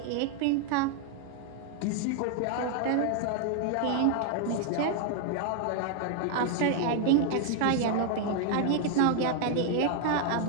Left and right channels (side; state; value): both; different; correlation 0.00